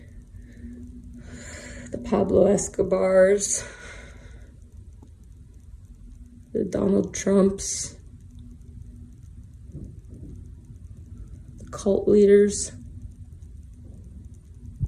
The Pablo Escobars, the Donald Trumps, the cult leaders.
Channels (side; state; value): both; identical; correlation 1.00